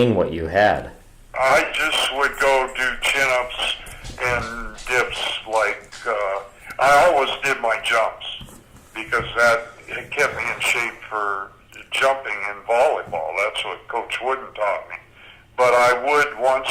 what you had? I just would go do chin-ups and dips. I always did my jumps because it kept me in shape for jumping in volleyball. That's what Coach Wooden taught me. But I would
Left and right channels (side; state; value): both; identical; correlation 1.00